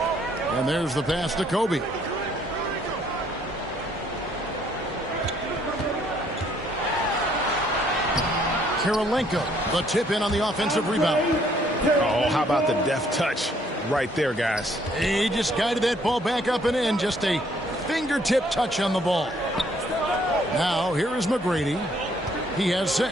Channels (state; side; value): normal; both; correlation 0.65